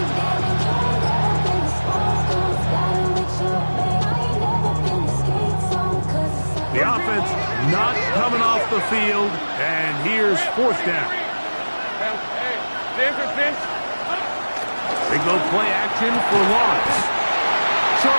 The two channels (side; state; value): both; inverted; correlation -1.00